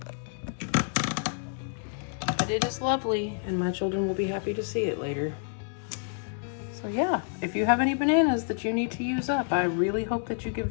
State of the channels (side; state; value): right; silent; digital silence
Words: But it is lovely, and my children will be happy to see it later. So yeah, if you have any bananas that you need to use up, I really hope that you give